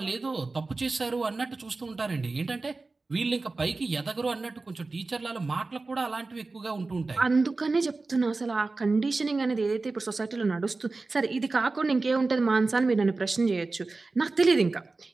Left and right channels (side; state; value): left; quieter; 3.6 dB